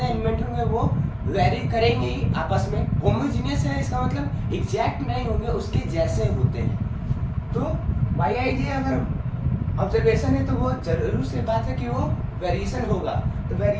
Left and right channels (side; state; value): both; identical; correlation 1.00